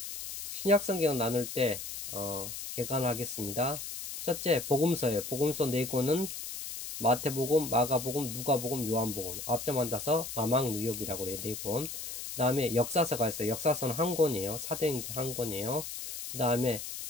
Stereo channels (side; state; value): left; noise; hiss, 7 dB below the sound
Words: 신약 성경 나눌 때 개관하겠습니다. 첫째, 복음서예요. 복음서 4권은 마태복음, 마가복음, 누가복음, 요한복음, 앞점 따서 마망누욕이라고 그래요. 4권. 그 다음에 역사서가 있어요. 역사서는 한 권이에요. 사도행전 한 권이에요. 그 다음에